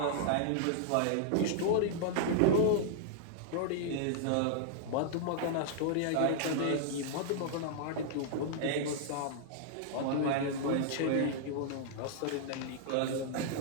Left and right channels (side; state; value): both; different; correlation -0.01